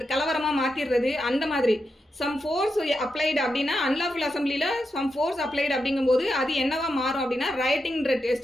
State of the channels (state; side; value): normal; both; correlation 0.87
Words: கலவரமாக மாற்றிடுறது, அந்த மாதிரி சம் ஃபோர்ஸ் அப்ளைடு அப்படின்னா அன்லாஃபுல் அசம்பிளியில் சம் ஃபோர்ஸ் அப்ளைடு அப்படிங்கும்போது அது என்னவா மாறும் அப்படின்னா ரைட்டிங்ன்ற